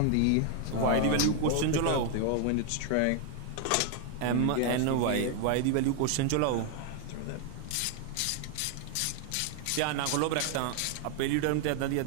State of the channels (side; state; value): both; different; correlation 0.00